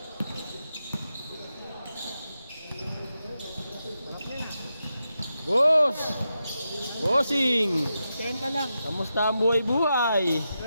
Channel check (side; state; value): both; inverted; correlation -0.88